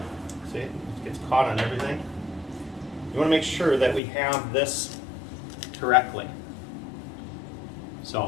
see, it gets caught on everything. You want to make sure that we have this correctly.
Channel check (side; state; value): right; drops out; at 4.0 s